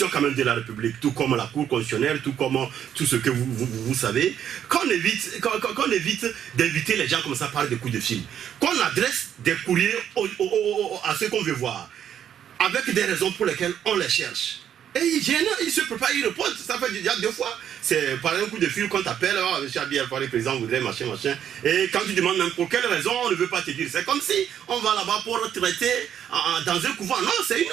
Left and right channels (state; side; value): quieter; left; 9.6 dB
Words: quand même de la République, tout comme la Cour constitutionnelle, tout comme tout ce que vous savez. Qu'on évite d'inviter les gens comme ça par des coups de fil. Qu'on adresse des courriers à ceux qu'on veut voir, avec des raisons pour lesquelles on les cherche. Et il se prépare, il répond, ça fait déjà 2 fois. C'est par un coup de fil qu'on t'appelle, oh, M. Abiy Alpha, le président voudrait machin. Et quand tu demandes même pour quelle raison, on ne veut pas te dire. C'est comme si on va là-bas pour traiter dans un couvent. Non, c'est une